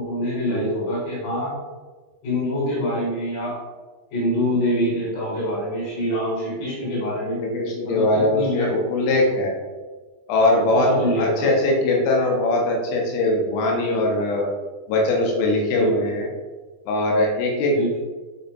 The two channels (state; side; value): late; right; 20 ms